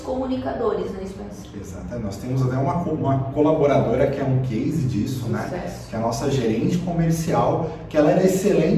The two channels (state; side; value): identical; both; correlation 1.00